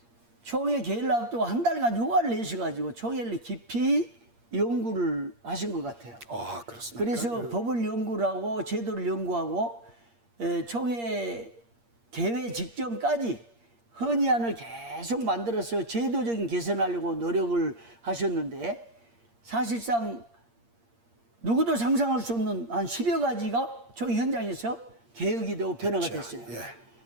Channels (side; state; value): left; late; 8.6 ms